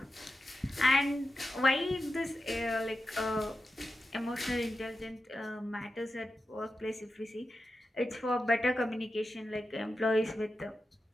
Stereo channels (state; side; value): normal; both; correlation 0.90